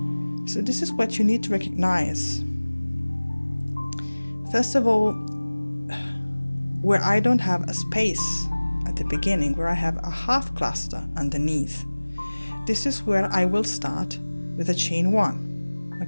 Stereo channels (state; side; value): inverted; both; correlation -1.00